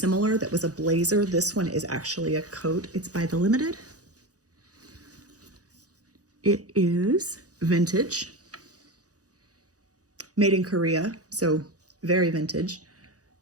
that was a blazer. This one is actually a coat. It's by The Limited. It is vintage, made in Korea, so very vintage.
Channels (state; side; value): late; left; 0.67 ms